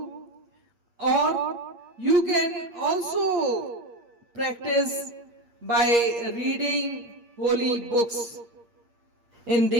or you can also practice by reading holy books. In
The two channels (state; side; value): late; left; 8.5 ms